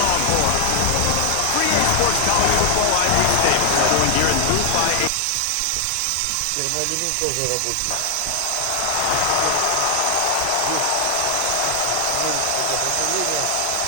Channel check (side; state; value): both; different; correlation 0.00